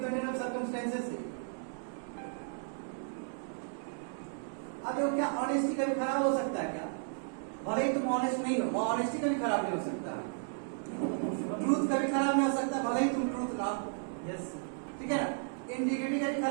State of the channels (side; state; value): left; silent; digital silence